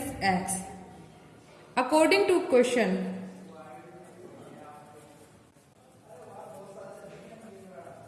x. According to question,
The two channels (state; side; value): identical; both; correlation 1.00